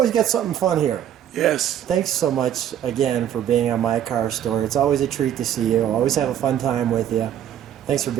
got something fun here. Yes. Thanks so much again for being on My Car Story. It's always a treat to see you. Always have a fun time with you. Thanks for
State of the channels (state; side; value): quieter; left; 10.5 dB